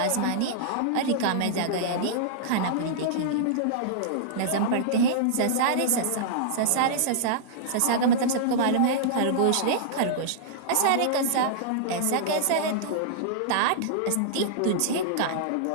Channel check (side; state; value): both; different; correlation -0.02